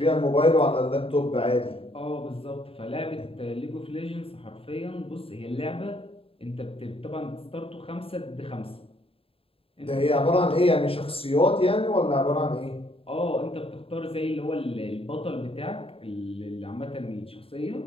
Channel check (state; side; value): late; right; 0.27 ms